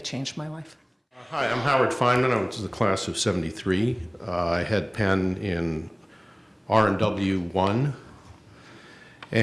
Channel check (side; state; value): both; identical; correlation 1.00